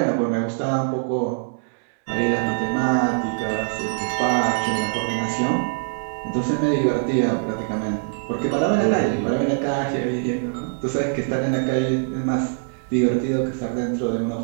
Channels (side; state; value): left; silent; 63 dB below the other